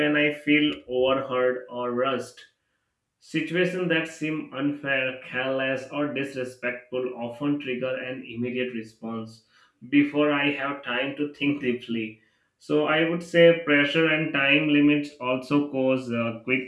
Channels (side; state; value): both; identical; correlation 1.00